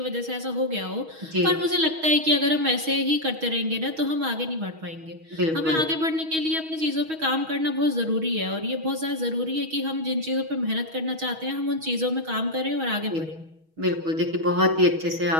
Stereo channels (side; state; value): left; late; 6.3 ms